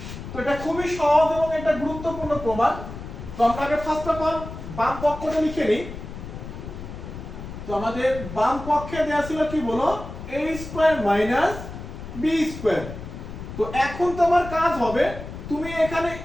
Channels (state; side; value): noise; left; rumble, 10 dB below the sound